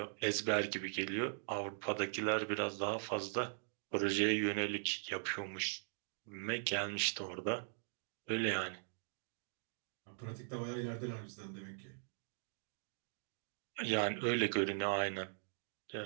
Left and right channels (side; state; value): left; silent; digital silence